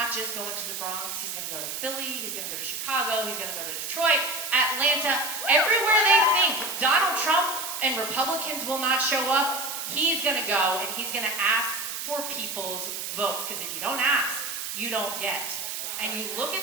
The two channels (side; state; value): right; noise; hiss, 5 dB below the sound